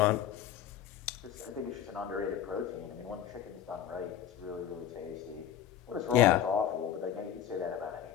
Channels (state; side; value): quieter; right; 9.9 dB